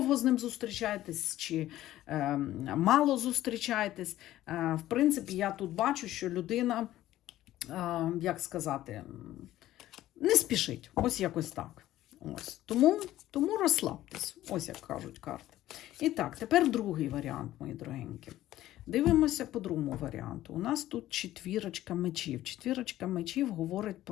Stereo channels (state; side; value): quieter; right; 14.3 dB